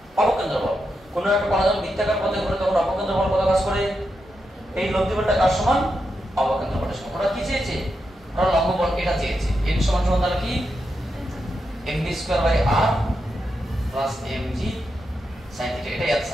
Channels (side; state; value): both; normal; correlation 0.86